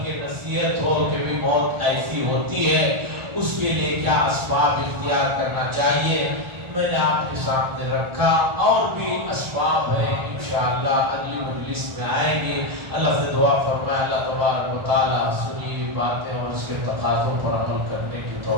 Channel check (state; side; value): late; left; 1.4 ms